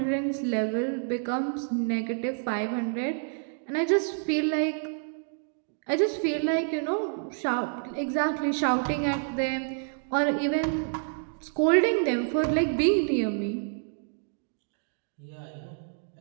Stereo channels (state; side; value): silent; left; 59 dB below the other